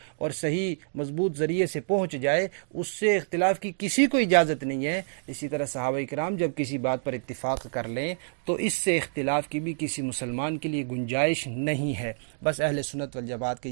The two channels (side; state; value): left; silent; digital silence